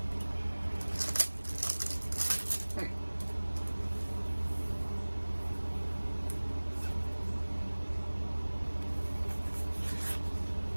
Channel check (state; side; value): inverted; both; correlation -1.00